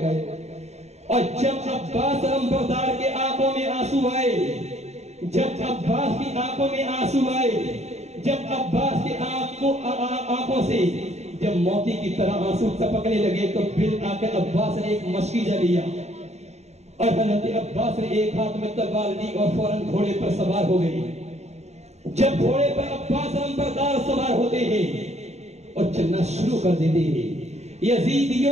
اور جب عباس علمبردار کے آنکھوں میں آنسو آئے، جب عباس کی آنکھوں میں آنسو آئے، جب عباس کی آنکھوں سے جب موتی کی طرح آنسو ٹپکنے لگے تو بالآخر عباس نے ایک مشکیزہ لیا اور حضرت عباس نے ایک ہاتھ میں تلوار لی اور فوراً گھوڑے پر سوار ہو گئی۔ جب گھوڑے پر عباس علمبردار سوار ہوتے ہیں اور چلنا شروع کر دیتے ہیں،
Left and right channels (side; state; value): left; late; 0.32 ms